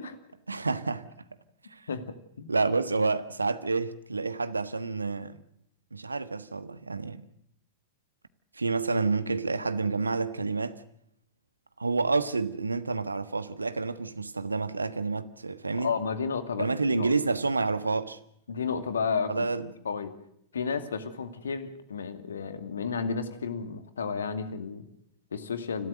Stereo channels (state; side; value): inverted; both; correlation -0.82